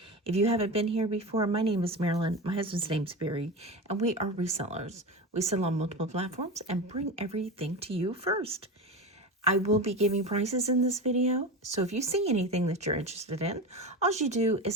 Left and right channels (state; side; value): normal; both; correlation 0.24